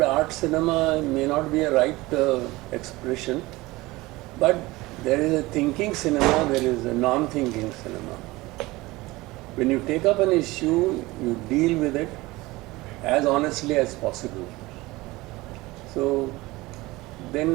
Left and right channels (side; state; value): left; quieter; 20.6 dB